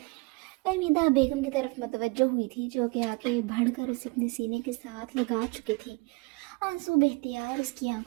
फहमीदा बेगम की तरफ मतवज्जो हुई थी जो कि आगे बढ़कर उसे अपने सीने के साथ लगा चुकी थी। आंसू बेख्तियार उसकी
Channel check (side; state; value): left; quieter; 27.3 dB